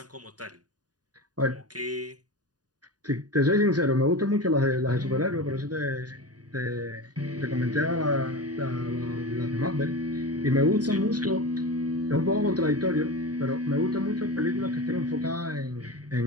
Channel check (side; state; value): left; late; 0.68 ms